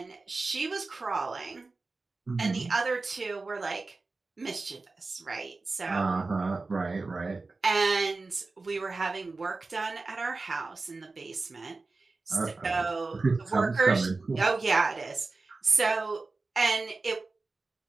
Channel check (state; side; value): quieter; left; 3.7 dB